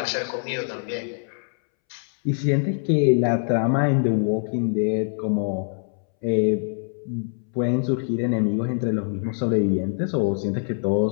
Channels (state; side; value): silent; right; 63 dB below the other